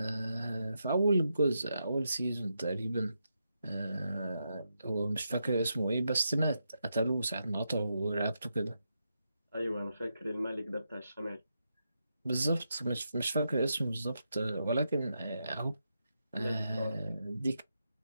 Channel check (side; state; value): both; inverted; correlation -0.84